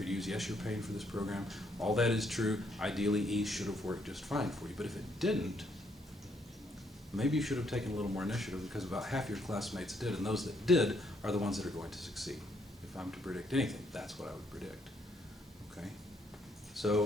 you to use. Yes, you're paying for this program. All that is true. Ideally, E should have worked just fine for you. But if it didn't, maybe you should have taken a little more initiative, because about half your classmates did, and those that did are the ones that are going to succeed. If I'm to predict anything, that's what I would predict. Okay? So,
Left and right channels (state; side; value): normal; both; correlation 0.72